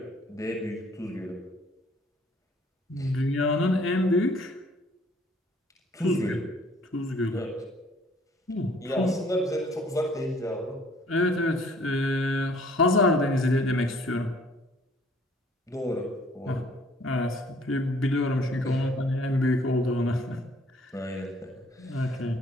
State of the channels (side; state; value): both; normal; correlation 0.58